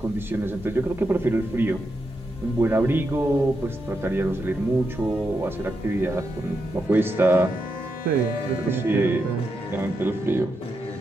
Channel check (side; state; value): both; normal; correlation 0.84